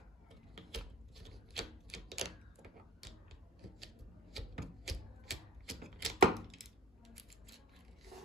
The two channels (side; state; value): both; normal; correlation 0.42